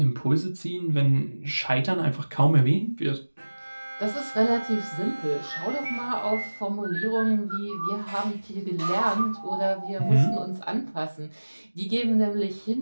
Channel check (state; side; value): inverted; both; correlation -1.00